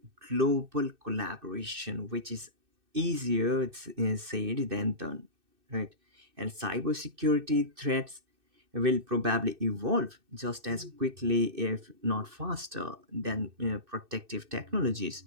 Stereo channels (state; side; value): late; left; 2.6 ms